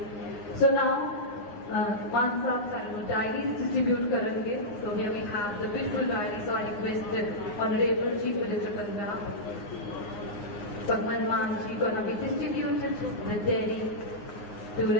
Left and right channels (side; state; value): right; late; 9.5 ms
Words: So now, Maan Saab Sanu diaries distribute करेंगे. So here we have the beautiful diaries. So I request Honorable Chief Minister Punjab, Bhagwant Mann ji, gonna be distributed the Delhi to